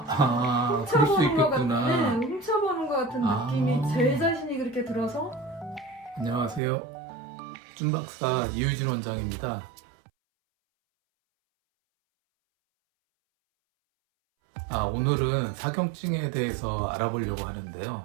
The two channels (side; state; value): left; drops out; at 6.6 s